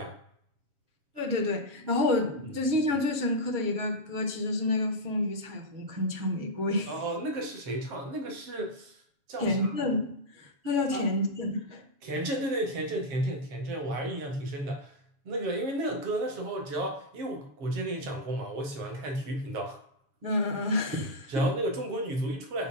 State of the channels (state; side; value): late; left; 7.2 ms